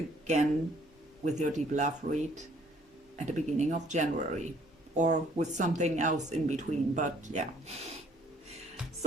with your deep love read at the beginning of January, or with something else in between, but yeah.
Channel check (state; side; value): normal; both; correlation 0.58